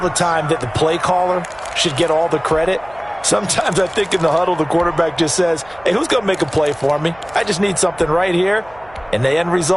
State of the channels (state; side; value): noise; right; hum, 25 dB below the sound